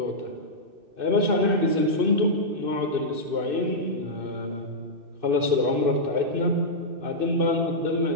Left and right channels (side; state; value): left; late; 2.6 ms